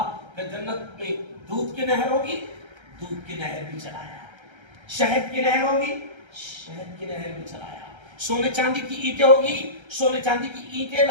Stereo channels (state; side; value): late; left; 1.3 ms